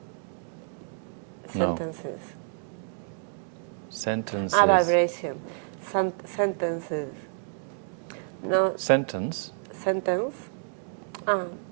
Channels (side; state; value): left; silent; 59 dB below the other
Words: No. Sentences. Sentences. Vibration. Sentences. No. Sentence? Sentence.